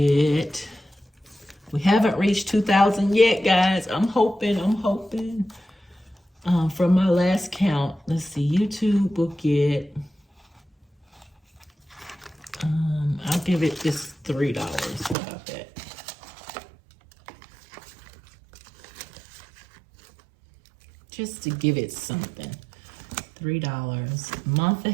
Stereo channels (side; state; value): left; drops out; at 15.2 s